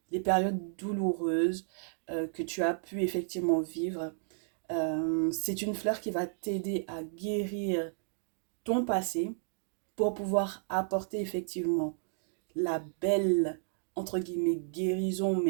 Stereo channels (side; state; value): left; silent; digital silence